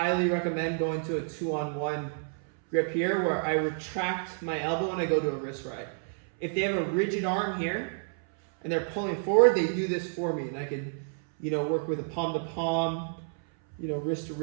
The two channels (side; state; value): left; silent; 58 dB below the other